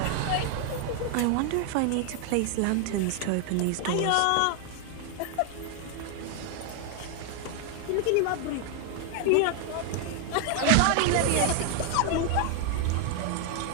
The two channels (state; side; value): different; both; correlation 0.00